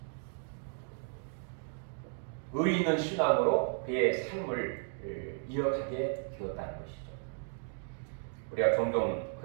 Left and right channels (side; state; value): left; silent; 55 dB below the other